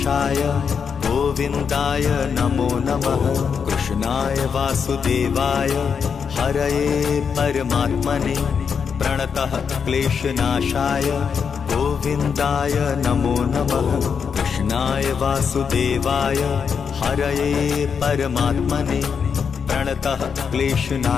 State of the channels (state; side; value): quieter; right; 6.5 dB